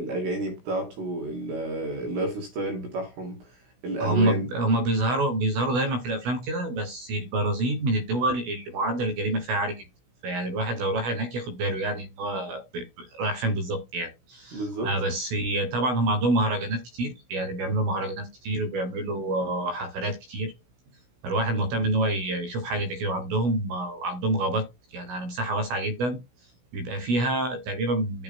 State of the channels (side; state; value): left; late; 16 ms